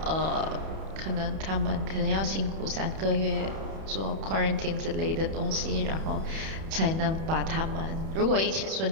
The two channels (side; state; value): left; late; 31 ms